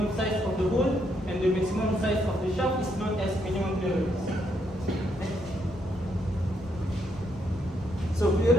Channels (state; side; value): normal; both; correlation 0.76